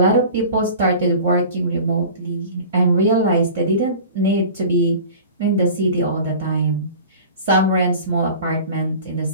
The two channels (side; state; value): both; inverted; correlation -0.40